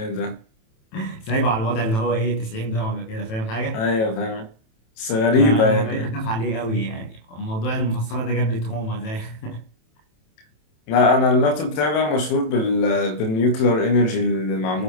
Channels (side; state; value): right; late; 27 ms